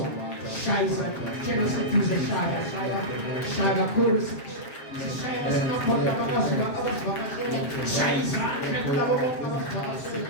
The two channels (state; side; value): late; right; 7.4 ms